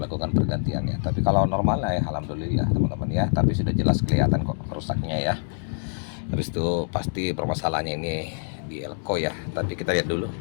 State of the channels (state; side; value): silent; right; 61 dB below the other